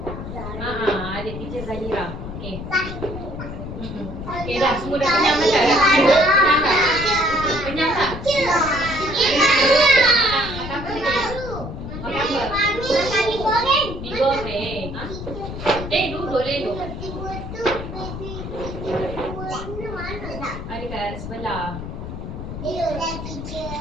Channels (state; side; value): noise; left; rumble, 8 dB below the sound